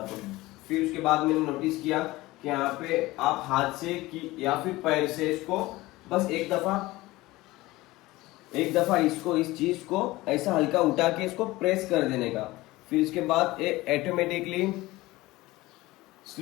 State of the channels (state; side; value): quieter; right; 19.2 dB